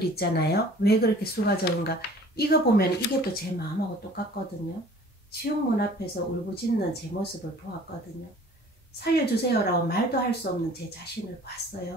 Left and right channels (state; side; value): normal; both; correlation 0.49